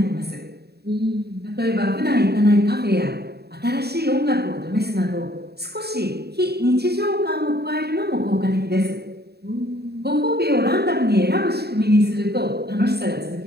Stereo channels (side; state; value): left; late; 0.47 ms